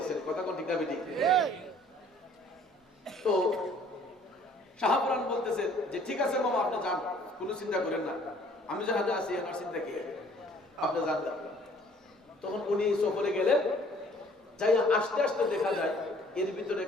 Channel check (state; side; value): normal; both; correlation 0.56